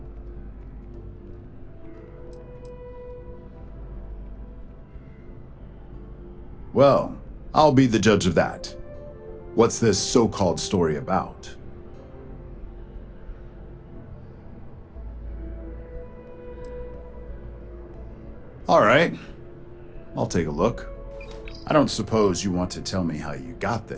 Well, I'll be the judge of that. What's this so-called story about? All right, I'll take a look. I don't suppose you want to tell me how you got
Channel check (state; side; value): identical; both; correlation 1.00